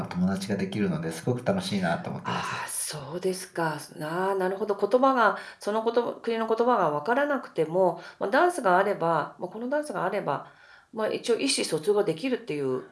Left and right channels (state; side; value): identical; both; correlation 1.00